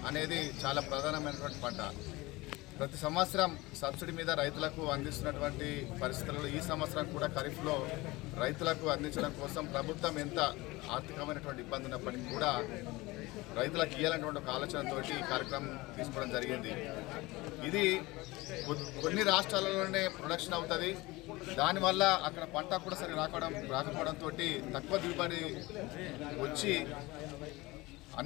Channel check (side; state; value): right; quieter; 21.5 dB